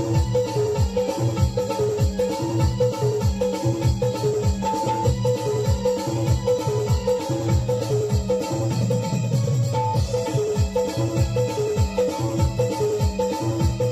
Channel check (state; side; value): identical; both; correlation 1.00